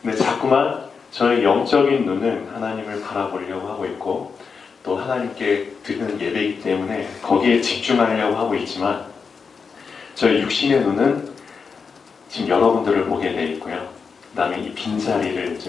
근데 자꾸만 저의 영적인 눈은 하나님을 바라보려고 하고 있고 또 하나님께 드리는 예배이기 때문에 거기에 집중하려고 하고 있지만 저의 육신의 눈은 지금 여러분들을 보게 돼 있고요. 그 다음에 이 빈자리를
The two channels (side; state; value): right; quieter; 5.5 dB